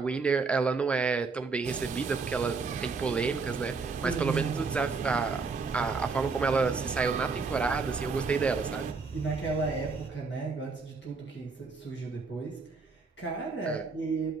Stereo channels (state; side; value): quieter; left; 4.5 dB